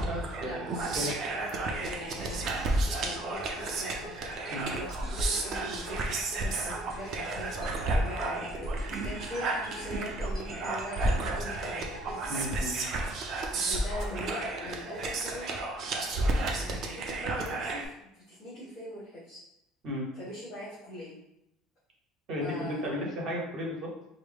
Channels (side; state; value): both; normal; correlation 0.57